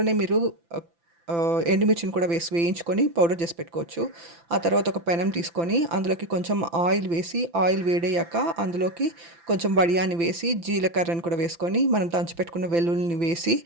మీరు ఎండుమిర్చిని కూడా వేయించుకొని పౌడర్ చేసి పెట్టుకోవచ్చు. ఆ తర్వాత ఒక పెనం తీసుకొని అందులోకి కొంచెం ఆయిల్ వేసి, ఆయిల్ వేడయ్యాక అందులోకి కొంచెం వడియాన్ని వేసి, జీలకర్రని కూడా వేసుకొని మనం దంచి పెట్టుకున్న వెల్లుల్లిని వేసి,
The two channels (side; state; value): left; late; 5.9 ms